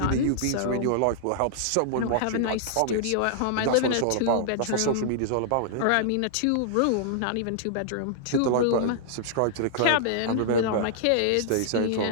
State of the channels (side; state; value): both; different; correlation -0.01